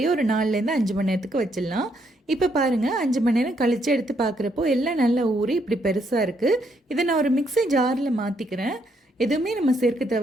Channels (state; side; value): normal; both; correlation 0.74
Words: ஒரு 4லேருந்து 5 மணி நேரத்துக்கு வச்சிடலாம். இப்போ பாருங்கள், 5 மணி நேரம் கழித்து எடுத்து பார்க்குறப்போ எல்லாம் நல்லா ஊறி இப்படி பெருசாக இருக்குது. இதை நான் ஒரு மிக்ஸி ஜாரில் மாற்றிக்கிறேன். எதுவுமே நம்ம சேர்க்க